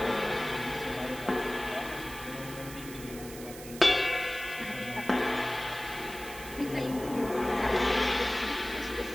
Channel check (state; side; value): noise; right; hiss, 14 dB below the sound